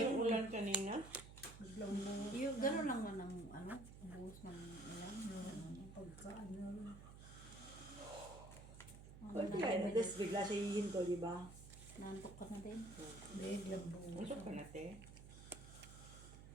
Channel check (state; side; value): noise; right; hum, 14 dB below the sound